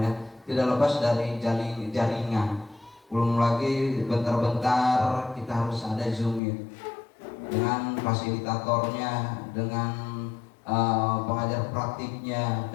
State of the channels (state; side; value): drops out; right; at 6.4 s